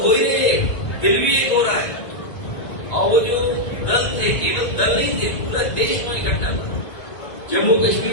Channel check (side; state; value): right; late; 1.3 ms